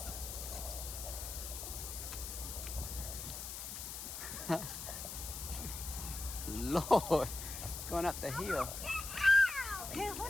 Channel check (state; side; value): noise; left; hiss, 7 dB below the sound